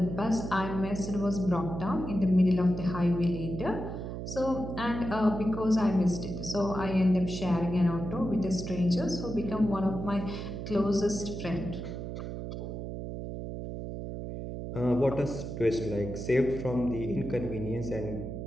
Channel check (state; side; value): noise; right; hum, 6 dB below the sound